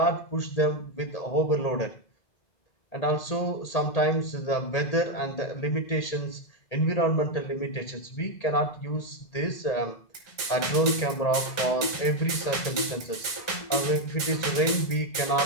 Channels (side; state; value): right; late; 1.9 ms